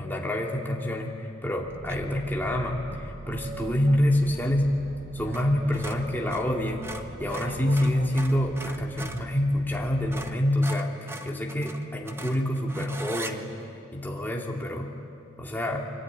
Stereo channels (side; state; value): both; normal; correlation 0.86